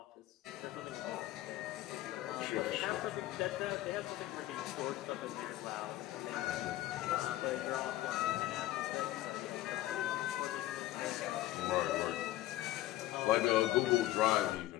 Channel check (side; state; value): right; quieter; 15.7 dB